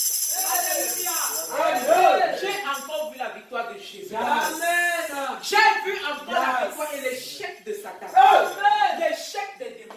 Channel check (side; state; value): both; identical; correlation 1.00